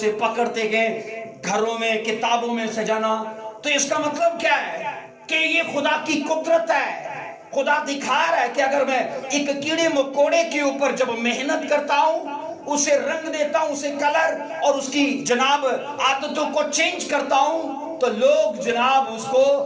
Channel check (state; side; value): identical; both; correlation 1.00